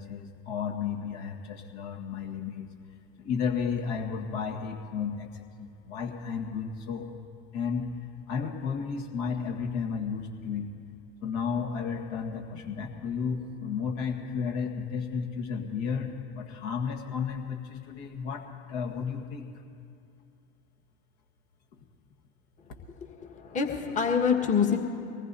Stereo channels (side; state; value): right; quieter; 5.9 dB